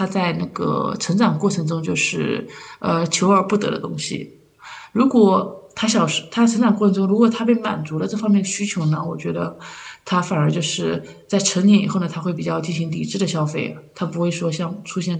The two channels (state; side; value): identical; both; correlation 1.00